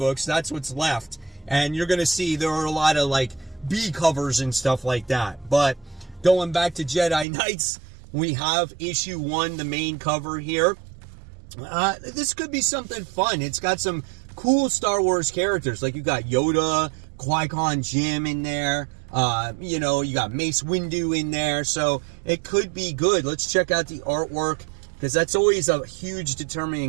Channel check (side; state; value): left; drops out; at 7.2 s